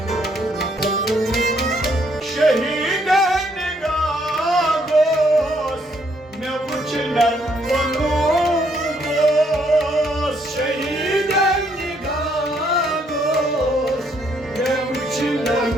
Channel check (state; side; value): normal; both; correlation 0.70